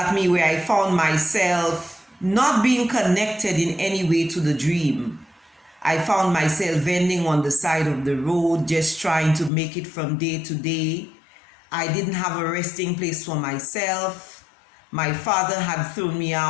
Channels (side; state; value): right; drops out; at 9.5 s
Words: me where I found myself not being connected in any way to the dream. I found myself vending on the side of the road, just trying to make it from day to day. I didn't have a resting place for myself. My father had thrown me